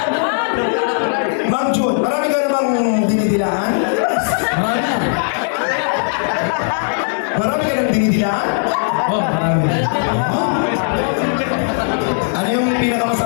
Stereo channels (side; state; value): right; silent; digital silence